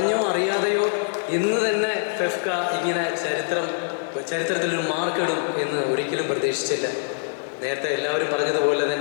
അറിയാതെയോ ഇന്ന് തന്നെ FK ഇങ്ങനെ ചരിത്രത്തിലൊരു മാർക്കിടും എന്ന് ഒരിക്കലും പ്രതീക്ഷിച്ചില്ല. നേരത്തെ എല്ലാവരും പറഞ്ഞതുപോലെ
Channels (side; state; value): right; silent; digital silence